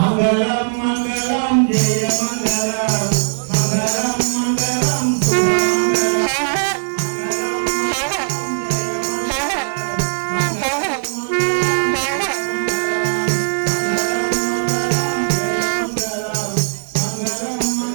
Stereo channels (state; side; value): silent; left; digital silence